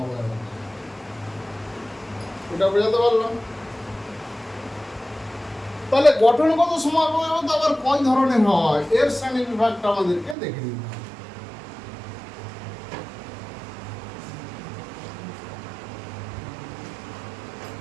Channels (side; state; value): left; drops out; at 10.4 s